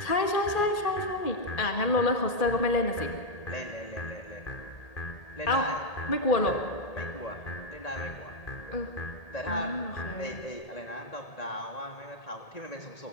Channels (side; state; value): right; late; 1.8 ms